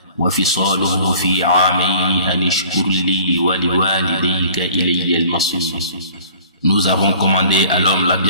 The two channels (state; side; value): inverted; both; correlation -0.49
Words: وفصاله في عامين أن اشكر لي ولوالديك إلي المصير. Nous avons commandé à l'homme la